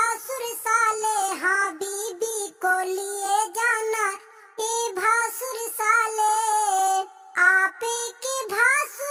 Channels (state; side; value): identical; both; correlation 1.00